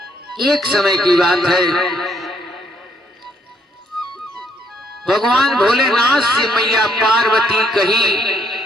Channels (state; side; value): normal; both; correlation 0.71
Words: एक समय की बात है, भगवान भोलेनाथ से मैया पार्वती कही